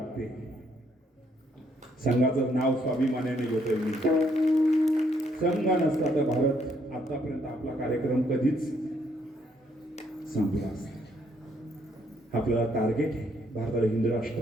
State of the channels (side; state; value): both; normal; correlation 0.70